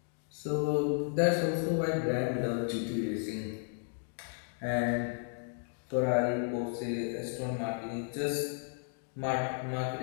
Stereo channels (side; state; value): right; silent; 55 dB below the other